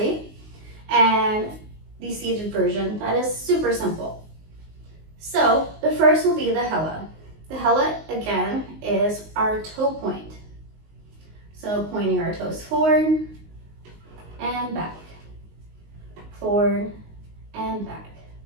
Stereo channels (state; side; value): late; left; 19 ms